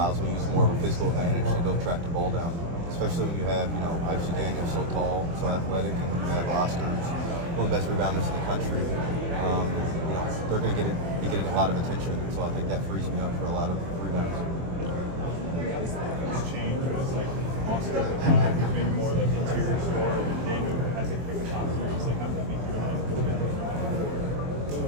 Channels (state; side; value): late; left; 24 ms